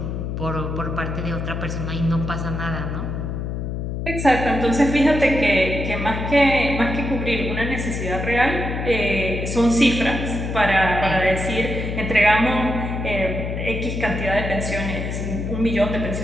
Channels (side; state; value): left; noise; hum, 4 dB below the sound